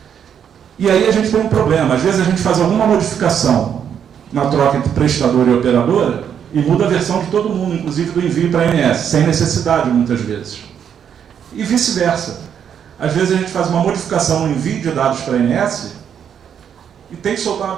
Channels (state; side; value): quieter; left; 8.3 dB